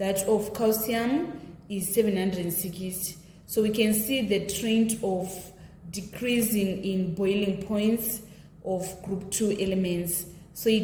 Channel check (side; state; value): both; identical; correlation 1.00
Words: of calcium is 760. So we can see the trend of decreasing in boiling points of group 2 elements. So